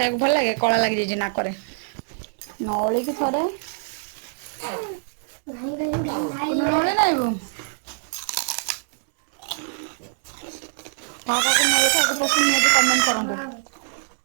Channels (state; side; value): silent; left; digital silence